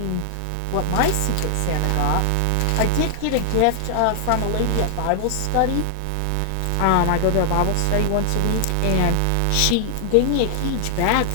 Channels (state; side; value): different; both; correlation 0.00